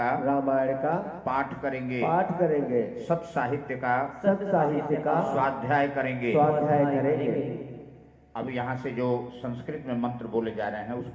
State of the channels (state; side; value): identical; both; correlation 1.00